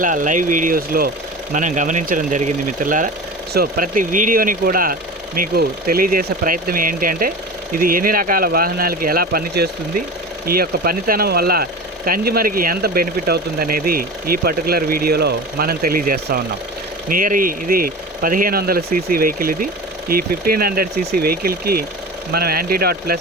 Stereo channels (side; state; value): both; normal; correlation 0.31